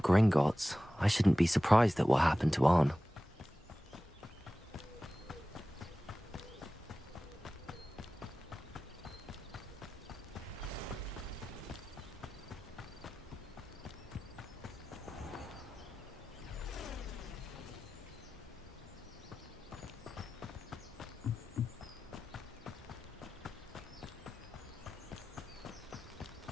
Gringotts, I shouldn't be surprised at what happened to Arn.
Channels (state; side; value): normal; both; correlation 0.96